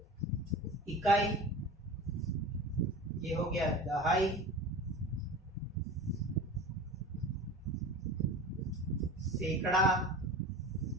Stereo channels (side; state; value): both; normal; correlation 0.34